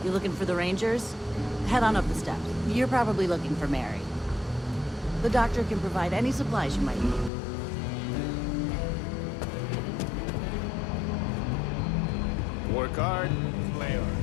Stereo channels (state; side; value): drops out; right; at 7.3 s